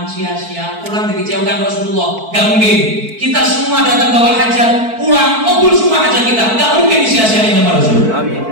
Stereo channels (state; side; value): late; left; 4.5 ms